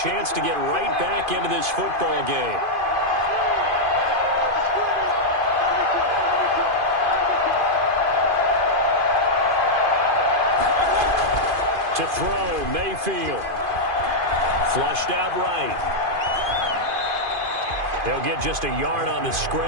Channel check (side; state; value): left; late; 2.5 ms